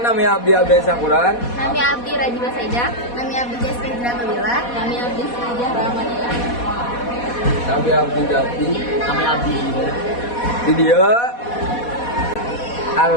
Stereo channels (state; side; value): late; right; 4.2 ms